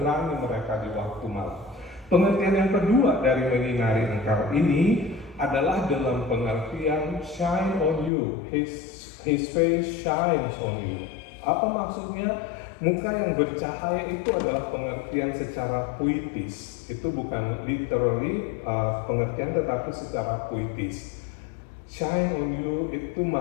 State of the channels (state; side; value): drops out; right; at 8.1 s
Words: mereka di waktu malam. Pengertian yang kedua dari menyinari engkau ini adalah dalam pengertian shine on you, his face shines on you. Apa maksudnya? Muka yang bercahaya itu adalah pengertian secara puitis. Itu bukan literally pengertian, tetapi secara puitis. Shine on you itu